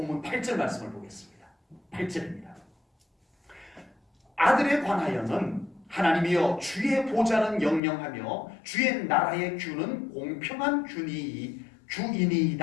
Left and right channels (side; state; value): right; drops out; at 7.8 s